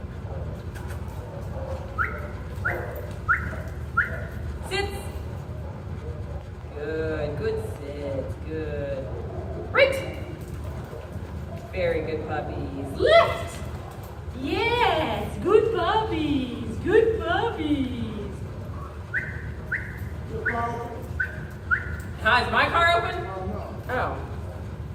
Sits. Good. Good sit. Good. Right. Very good, puppies. Left. Yes. Good puppies. Good puppies. Hi, is my car open? Oh.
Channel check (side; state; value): both; identical; correlation 1.00